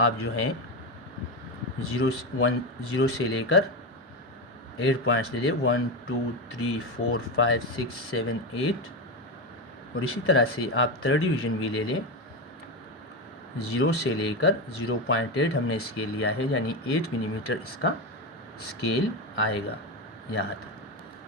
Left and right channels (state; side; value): normal; both; correlation 0.15